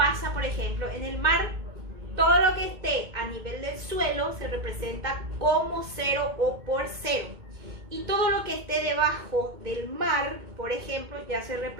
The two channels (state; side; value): late; left; 2.2 ms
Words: por ejemplo, en el mar. Todo lo que esté a nivel del suelo se representa como cero o por cero. Y todo lo que esté debajo del mar, por ejemplo, ya se